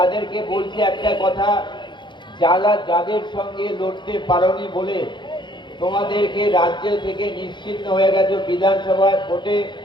বলছি একটা কথা, যাদের সঙ্গে লড়তে পারোনি বলে তোমাদেরকে রাজ্য থেকে নিশ্চিহ্ন হয়ে গেছে, বিধানসভায় ভোটে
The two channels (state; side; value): late; right; 0.23 ms